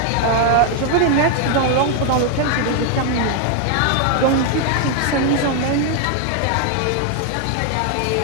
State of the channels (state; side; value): different; both; correlation 0.00